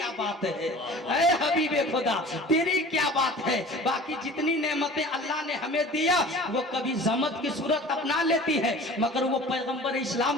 बात है, ऐ हबीबे खुदा तेरी क्या बात है। बाकी जितनी नेमतें अल्लाह ने हमें दिया वो कभी ज़हमत की सूरत अपना लेती है, मगर वो पैगंबर इस्लाम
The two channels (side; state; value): both; normal; correlation 0.43